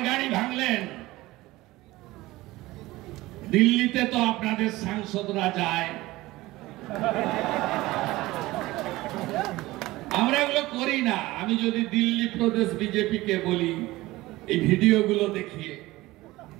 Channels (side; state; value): left; quieter; 18.8 dB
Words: গাড়ি ভাঙলেন। দিল্লিতে তো আপনাদের সাংসদরা যায়, আমরা এগুলো করি না। আমি যদি দিল্লি প্রদেশ বিজেপি কে বলি এই ভিডিওগুলো দেখিয়ে